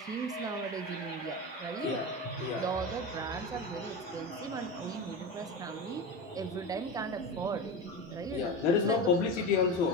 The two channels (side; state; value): both; normal; correlation 0.23